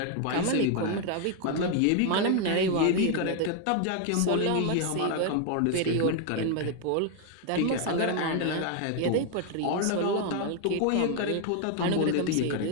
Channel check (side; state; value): both; different; correlation 0.00